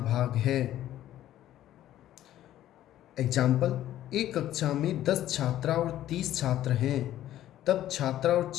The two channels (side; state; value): right; quieter; 12.9 dB